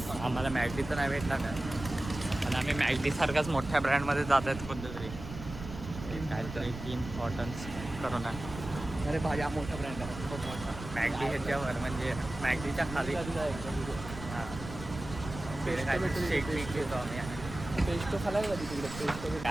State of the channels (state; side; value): noise; right; rumble, 10 dB below the sound